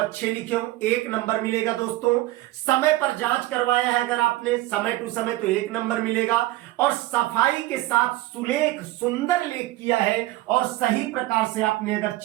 लिखे हों, 1 नंबर मिलेगा दोस्तों। समय पर जांच करवाया है अगर आपने समय टू समय तो 1 नंबर मिलेगा। और सफाई के साथ सुलेख सुंदर लेख किया है और सही प्रकार से आपने अगर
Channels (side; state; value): left; quieter; 17.4 dB